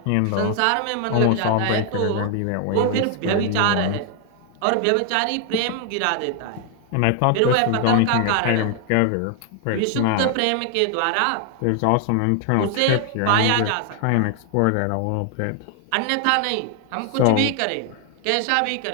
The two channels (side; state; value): both; different; correlation 0.00